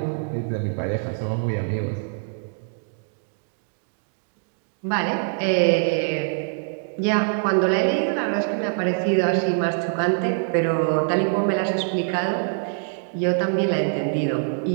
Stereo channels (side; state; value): left; silent; digital silence